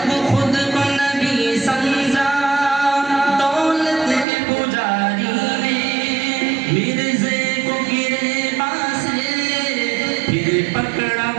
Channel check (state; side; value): drops out; left; at 4.2 s